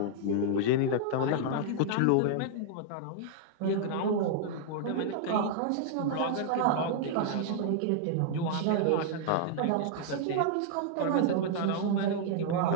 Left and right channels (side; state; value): both; different; correlation -0.01